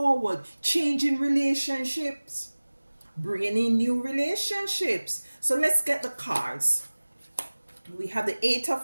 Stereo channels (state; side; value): inverted; both; correlation -1.00